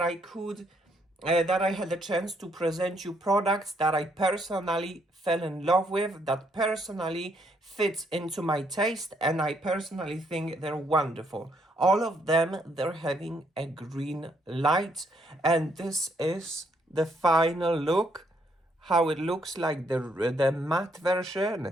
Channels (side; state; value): both; normal; correlation 0.72